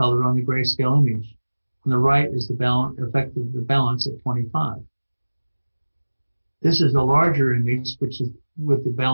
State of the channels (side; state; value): both; inverted; correlation -1.00